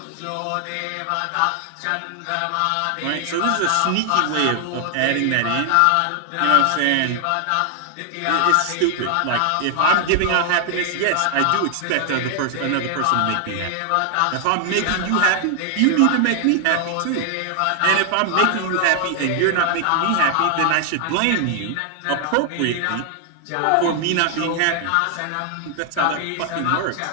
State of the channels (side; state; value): both; different; correlation 0.00